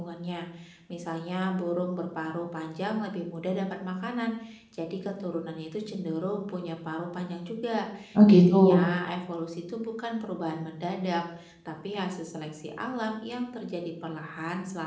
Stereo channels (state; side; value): identical; both; correlation 1.00